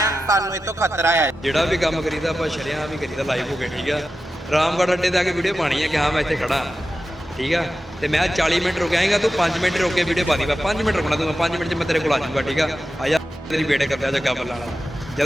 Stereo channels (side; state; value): both; normal; correlation 0.92